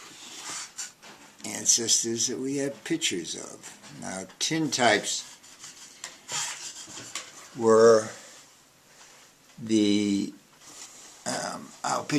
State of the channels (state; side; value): identical; both; correlation 1.00